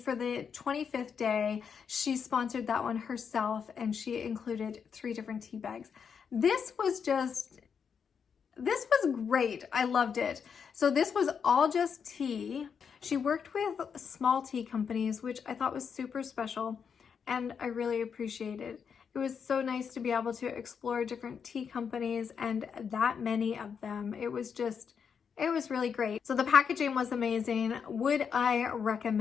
the 25th day, she sponsored that one herself, and she included 3 different tea bags. This was great. I loved it. So this was all just tea. She worked with small tea companies, which I thought was super special, and I really appreciated. It was so nice to be able to explore different tea companies, and that many of them. It was really great. So the packaging was amazing. Would I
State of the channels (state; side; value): quieter; right; 6.7 dB